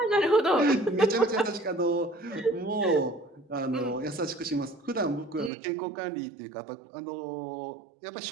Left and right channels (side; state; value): left; drops out; at 5.5 s